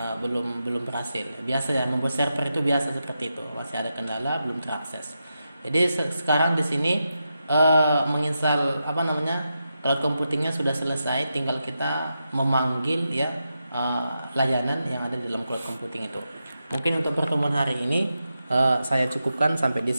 belum berhasil. Biasa ya, membuat server itu biasa seperti itu. Masih ada kendala, belum terakses. Jadi sekarang di sini menginstal cloud computingnya sudah selesai. Tinggal kita memanggil ya layanan yang ada di dalam cloud computing itu. Mungkin untuk pertemuan hari ini saya cukupkan sampai di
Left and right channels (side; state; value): both; inverted; correlation -0.87